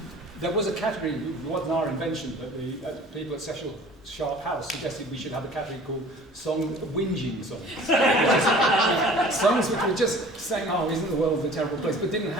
There was a category, it wasn't our invention, but the people at Cecil Sharp House suggested we should have a category called whinging songs. Songs which were just saying, oh, isn't the world a terrible place, but didn't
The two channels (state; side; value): normal; both; correlation 0.47